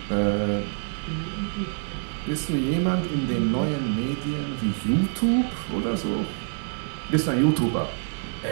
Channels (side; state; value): left; silent; 61 dB below the other